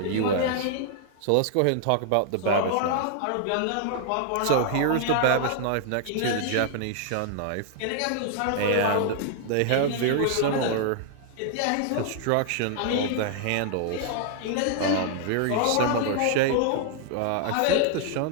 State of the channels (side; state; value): both; different; correlation 0.00